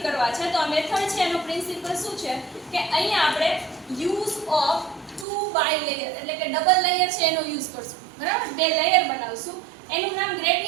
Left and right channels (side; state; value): left; drops out; at 5.2 s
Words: કરવા છે તો આ મેથડ છે એનો પ્રિન્સિપલ શું છે કે અહીંયા આપણે યુઝ ઓફ 2 બાય લેયર એટલે કે ડબલ લેયર છે એનો યુઝ કરશું, બરાબર? 2 લેયર બનાવશું. એનું નામ